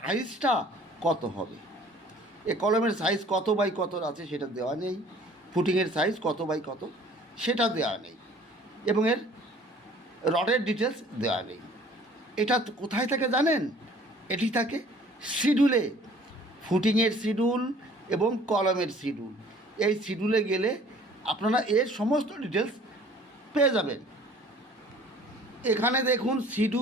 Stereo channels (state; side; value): normal; both; correlation 0.52